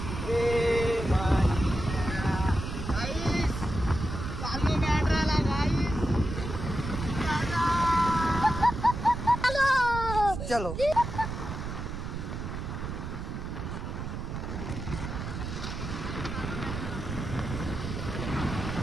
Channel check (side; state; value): right; noise; rumble, 6 dB below the sound